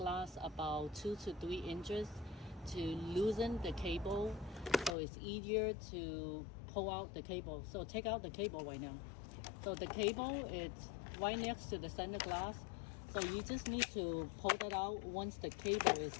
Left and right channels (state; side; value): drops out; right; at 5.0 s